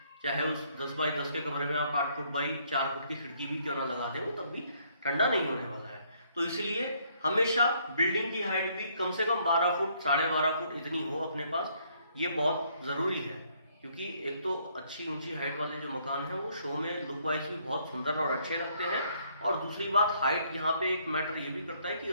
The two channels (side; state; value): both; inverted; correlation -0.67